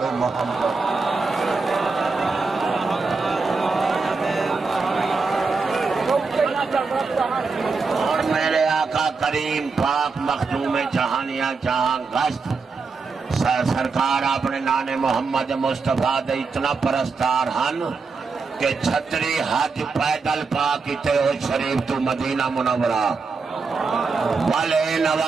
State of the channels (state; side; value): quieter; left; 4.5 dB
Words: محمد میرے آقا کریم پاک مخدوم جہانیاں جہاں گشت سرکار اپنے نانے محمد مصطفیٰ دے اتنا پرستار ہن کہ چھتری حج پیدل پاک تے ہو شریف تو مدینہ منورہ والے